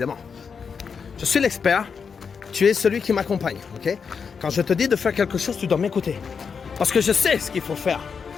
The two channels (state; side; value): quieter; right; 6.0 dB